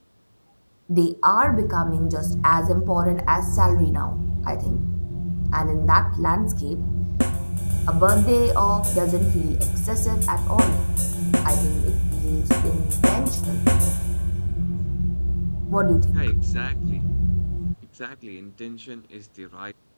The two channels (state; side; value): inverted; both; correlation -1.00